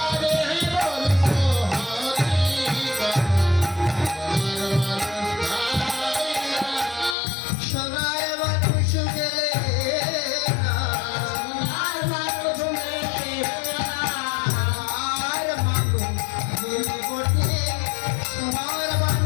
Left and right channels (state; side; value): drops out; right; at 7.2 s